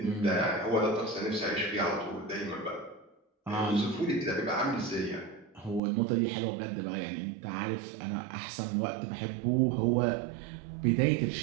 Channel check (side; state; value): left; drops out; at 5.8 s